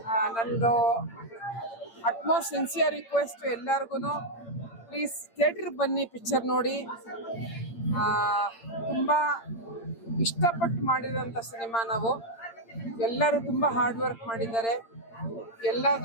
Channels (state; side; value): late; right; 8.8 ms